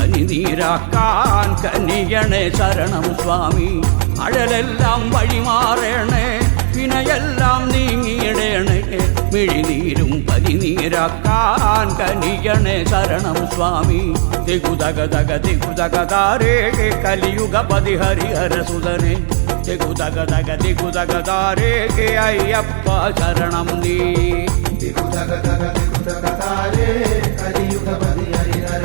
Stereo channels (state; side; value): silent; left; 62 dB below the other